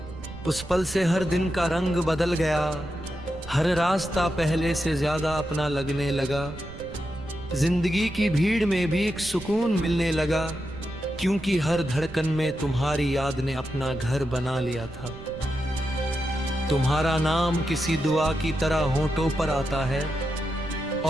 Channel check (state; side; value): noise; right; rumble, 15 dB below the sound